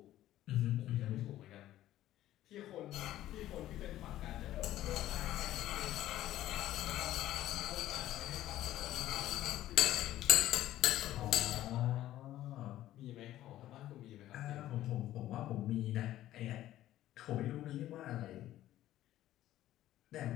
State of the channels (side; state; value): right; quieter; 13.8 dB